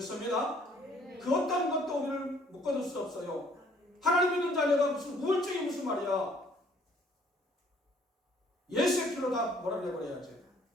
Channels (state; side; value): normal; both; correlation 0.61